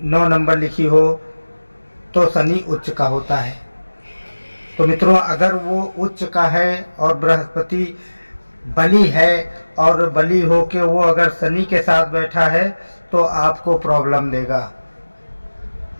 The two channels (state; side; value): inverted; both; correlation -1.00